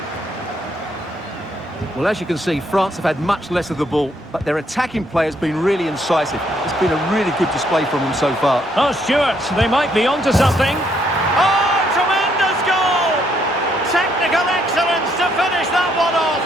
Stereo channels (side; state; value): both; normal; correlation 0.71